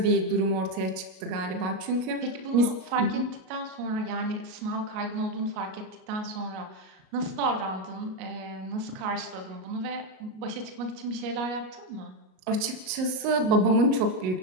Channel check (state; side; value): late; left; 38 ms